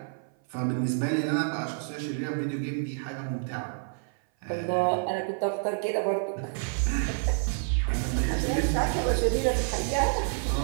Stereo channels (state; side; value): silent; left; 57 dB below the other